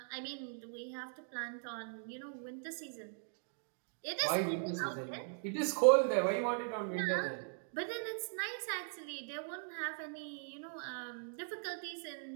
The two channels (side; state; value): left; silent; digital silence